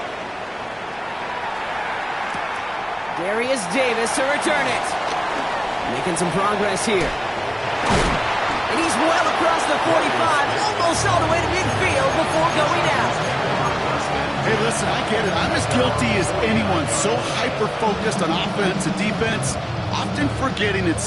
Darius Davis to return it. Making some progress here. And he's well across the 45, almost all the way to midfield before going out. Hey, listen, I get it. I'm as guilty as anyone. So hyper-focused on offense and defense, often forgetting it's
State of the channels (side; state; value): both; identical; correlation 1.00